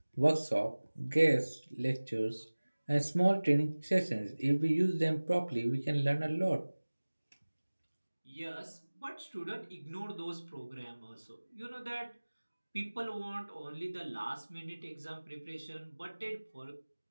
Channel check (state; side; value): inverted; both; correlation -1.00